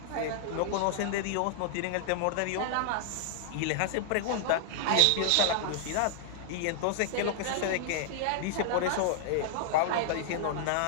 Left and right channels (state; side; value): different; both; correlation -0.01